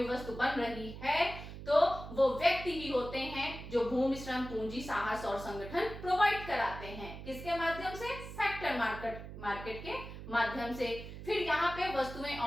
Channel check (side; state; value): right; noise; hum, 11 dB below the sound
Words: वस्तु बन रही है तो वो व्यक्ति ही होते हैं जो भूमि, श्रम, पूंजी, साहस और संगठन प्रोवाइड कराते हैं। किसके माध्यम से? फैक्टर मार्केट के माध्यम से। फिर यहाँ पे वस्तुएं